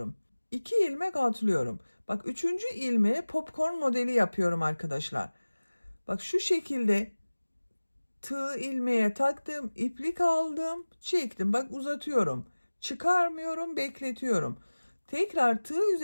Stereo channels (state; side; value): inverted; both; correlation -1.00